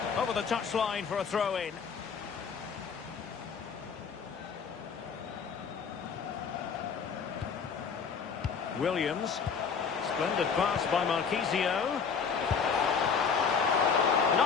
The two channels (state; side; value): quieter; right; 6.1 dB